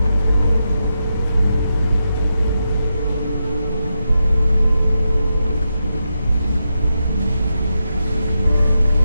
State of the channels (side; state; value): both; inverted; correlation -0.85